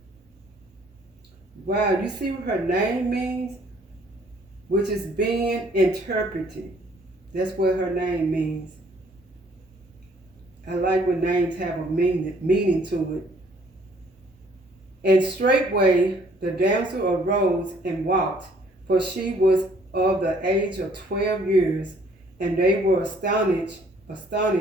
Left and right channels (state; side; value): normal; both; correlation 0.61